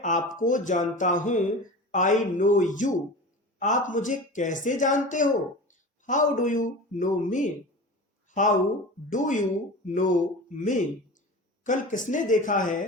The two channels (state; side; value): normal; both; correlation 0.32